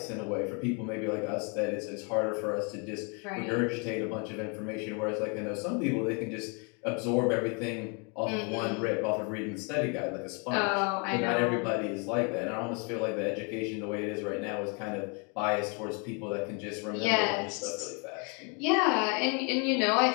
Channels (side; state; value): right; quieter; 35.0 dB